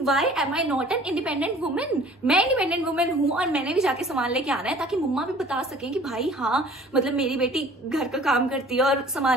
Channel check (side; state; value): both; normal; correlation 0.50